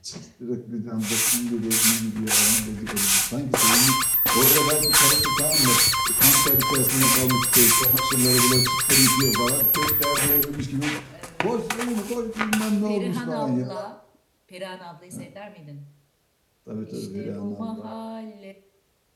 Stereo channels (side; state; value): both; identical; correlation 1.00